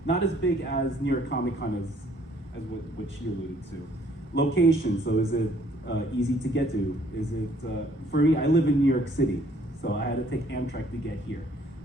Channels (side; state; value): both; normal; correlation 0.62